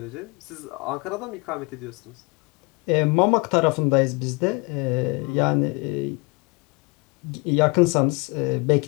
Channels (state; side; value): quieter; right; 28.2 dB